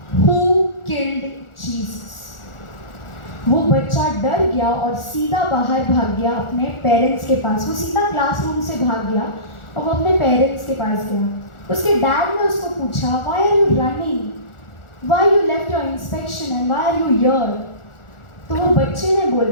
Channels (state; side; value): late; right; 1.4 ms